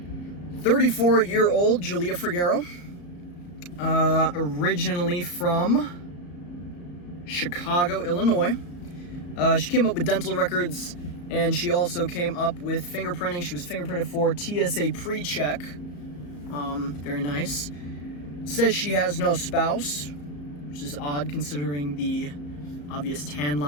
Julia Figueroa, originally from Chicago, Illinois. She came up with dental records, and she also came up with fingerprinting. She was fingerprinted for TSA pre-check. Very nice. Says she has no spouse, which is odd considering the obvious tan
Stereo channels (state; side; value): late; right; 34 ms